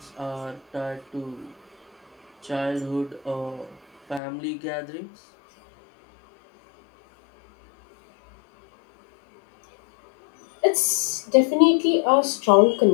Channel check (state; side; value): drops out; right; at 4.2 s